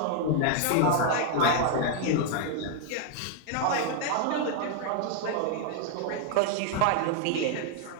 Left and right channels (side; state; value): both; different; correlation 0.00